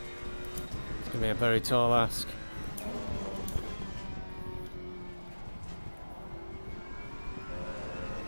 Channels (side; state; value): both; inverted; correlation -1.00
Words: It's going to be a very tall ask.